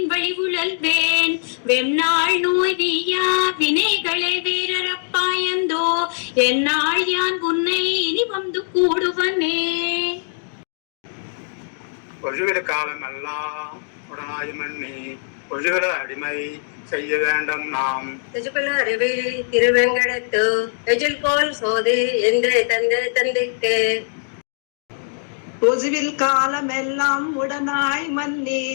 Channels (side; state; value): right; silent; digital silence